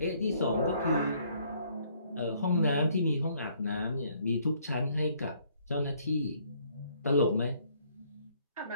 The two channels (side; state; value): both; inverted; correlation -0.65